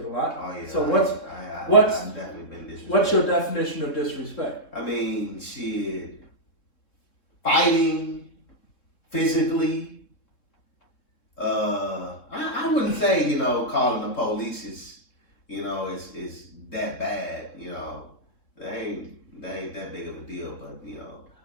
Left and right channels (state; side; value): late; right; 3.7 ms